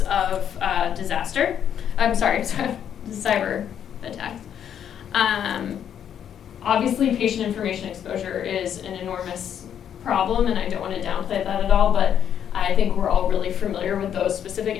of disaster. Cyber attacks. Obviously, patient information exposure is an enormous problem, and I don't want to downplay that at all, but I think we're all really familiar with those specific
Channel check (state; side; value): quieter; right; 9.2 dB